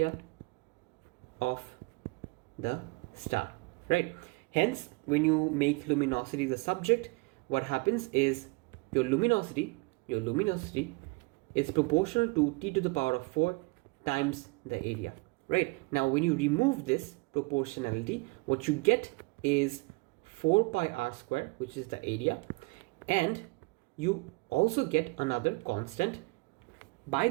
star, right? Hence, when you make luminosity the subject, what happens is your luminosity is proportional to t to the power of 4 times the area, right? Now when you remove this proportionality, what you get is 4 pi r square, which is the area, and you also get another constant by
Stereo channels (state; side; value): quieter; left; 27.3 dB